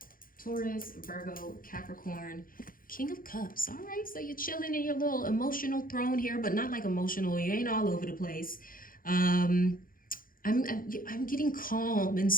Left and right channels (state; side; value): late; right; 0.41 ms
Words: Taurus, Virgo, Capricorn, King of Cups. All right, so you're chilling in your little emotional throne here, but not like emotional. You ain't all over the place. I'm getting calm and